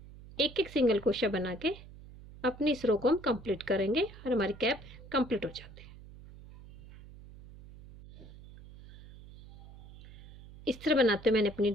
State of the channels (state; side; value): noise; right; hum, 18 dB below the sound